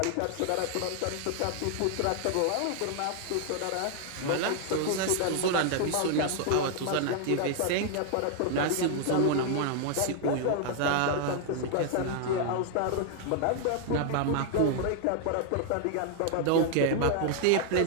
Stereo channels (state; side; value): different; both; correlation 0.00